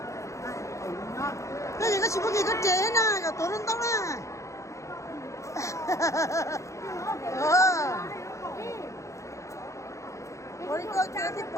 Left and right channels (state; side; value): late; right; 0.15 ms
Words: 那个去我给个这呢，个多人到了。我一个这的包。